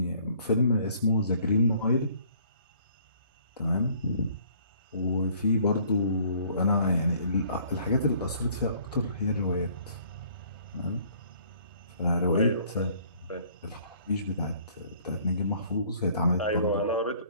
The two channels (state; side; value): inverted; both; correlation -0.59